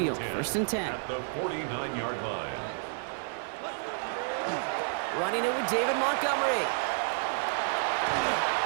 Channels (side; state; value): left; silent; digital silence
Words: First and 10. At the 49-yard line. Running it with David Montgomery.